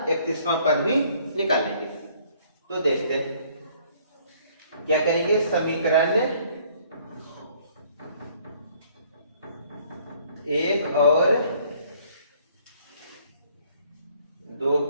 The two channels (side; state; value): both; inverted; correlation -0.60